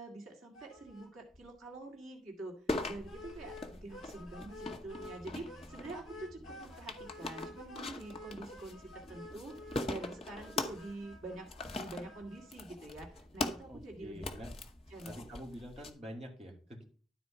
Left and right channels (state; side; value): normal; both; correlation 0.66